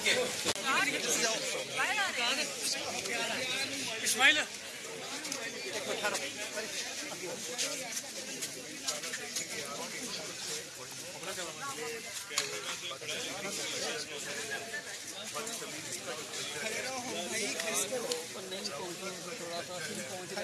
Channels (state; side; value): identical; both; correlation 1.00